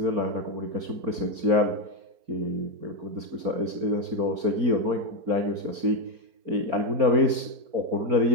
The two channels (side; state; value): left; late; 4.4 ms